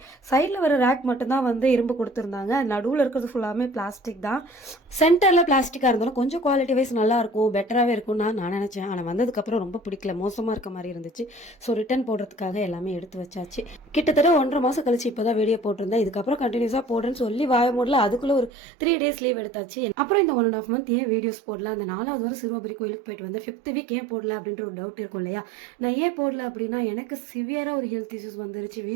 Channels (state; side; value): drops out; left; at 18.5 s